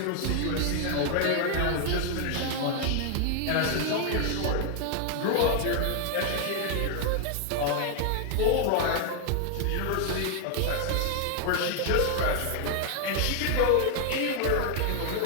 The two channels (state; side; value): different; both; correlation 0.00